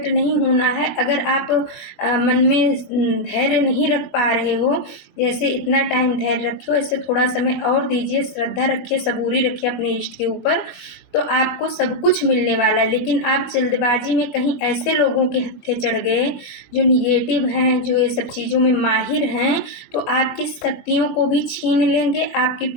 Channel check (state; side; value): late; right; 20 ms